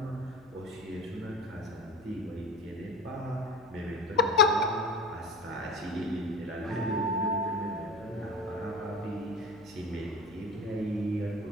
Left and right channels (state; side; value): noise; left; hum, 23 dB below the sound